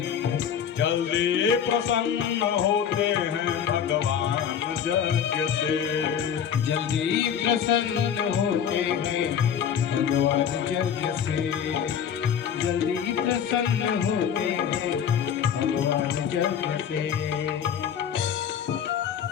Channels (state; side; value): quieter; right; 8.3 dB